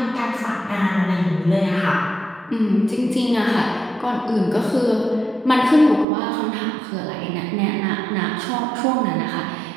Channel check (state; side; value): drops out; left; at 6.1 s